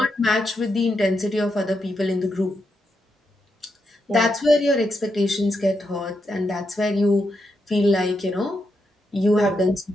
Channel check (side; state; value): both; normal; correlation 0.83